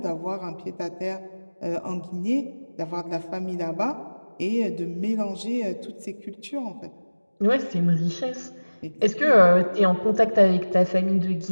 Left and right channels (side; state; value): both; inverted; correlation -1.00